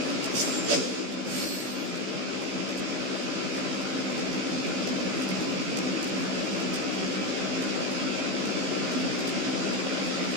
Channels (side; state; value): left; late; 16 ms